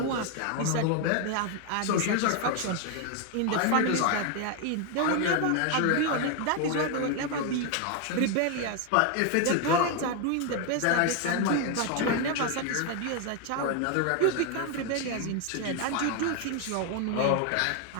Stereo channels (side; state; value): both; different; correlation 0.01